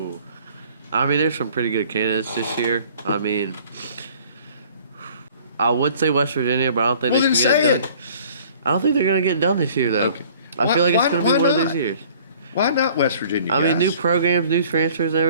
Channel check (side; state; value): both; inverted; correlation -0.53